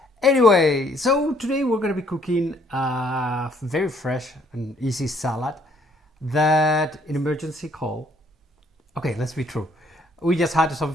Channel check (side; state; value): both; normal; correlation 0.65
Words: Anyway, so today we're going to be cooking a very fresh and easy salad that in emergency call. Okay, let's be true. We just had some